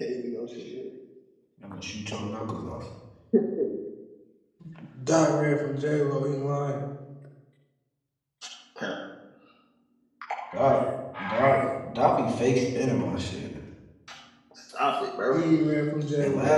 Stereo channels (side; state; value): both; identical; correlation 1.00